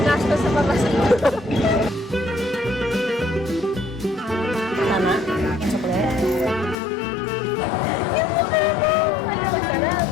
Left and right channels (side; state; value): right; drops out; at 6.8 s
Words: sa pamasahe. Tama? Chocolate?